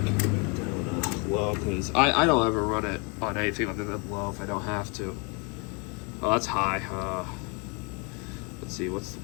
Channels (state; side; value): quieter; right; 32.8 dB